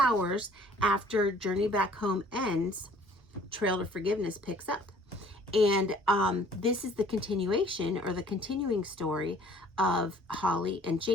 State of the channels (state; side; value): normal; both; correlation 0.55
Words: after Journey Back Home ends, Trail to Forgiveness picks up. And this is the continuation or the continuing story of Holly and